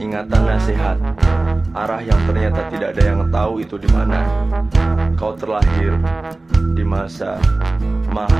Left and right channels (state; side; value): quieter; left; 3.1 dB